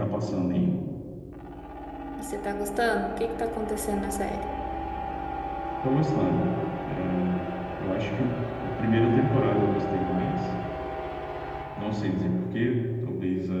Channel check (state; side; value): identical; both; correlation 1.00